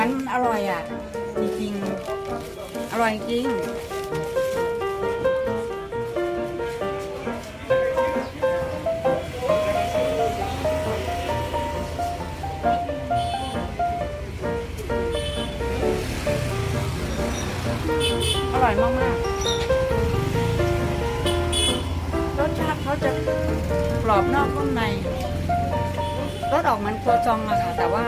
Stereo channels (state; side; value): identical; both; correlation 1.00